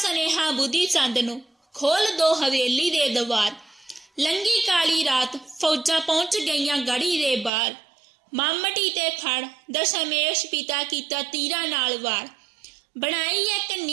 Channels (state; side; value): drops out; left; at 7.5 s